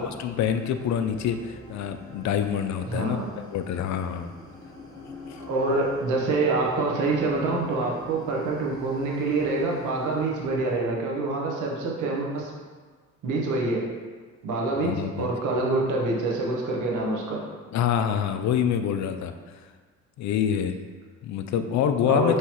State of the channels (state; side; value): normal; both; correlation 0.24